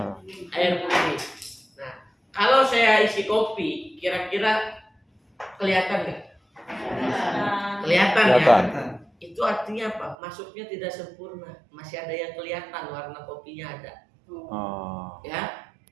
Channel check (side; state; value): left; drops out; at 10.2 s